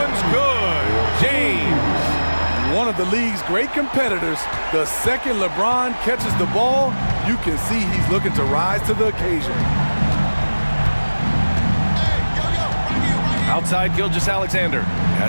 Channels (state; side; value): inverted; both; correlation -1.00